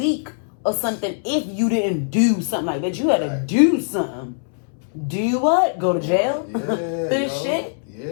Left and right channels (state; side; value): silent; right; 65 dB below the other